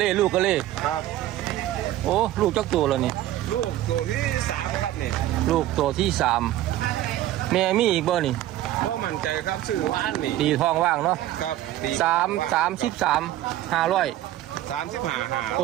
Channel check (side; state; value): left; quieter; 14.0 dB